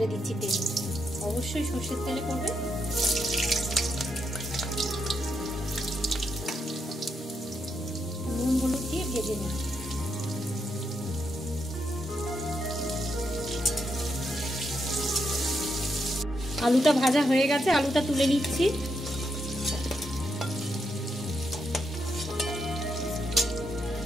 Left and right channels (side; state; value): both; normal; correlation 0.81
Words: দিচ্ছি তেলে, অবশ্যই সর্ষের তেলে করবে। নুন হলুদ দিয়ে ভেজে নেব। আলুটা ভাজা হয়ে গেছে, আলুটা তুলে নিচ্ছি।